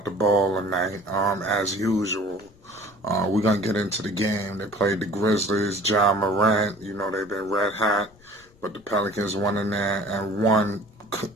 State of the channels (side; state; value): left; noise; rumble, 28 dB below the sound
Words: the ball tonight, as usual. We're gonna get into the game. They played the Grizzlies. Ja Morant, they've been red hot, but the Pelicans went in there and won